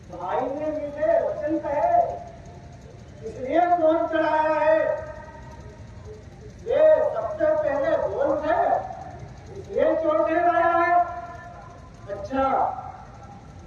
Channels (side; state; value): both; identical; correlation 1.00